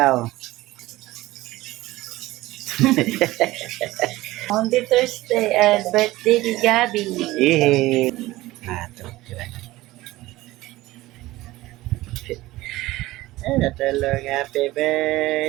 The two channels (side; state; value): left; quieter; 18.0 dB